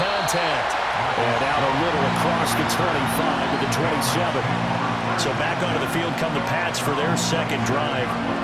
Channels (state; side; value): identical; both; correlation 1.00